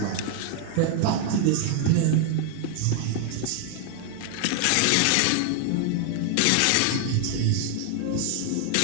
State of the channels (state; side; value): different; both; correlation 0.00